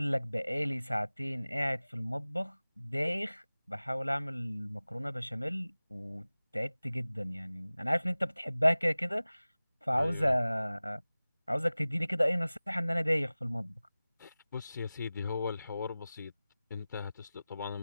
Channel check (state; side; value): inverted; both; correlation -0.98